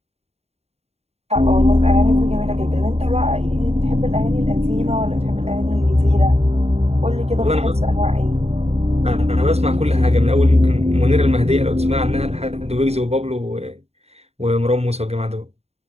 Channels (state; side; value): late; left; 0.30 ms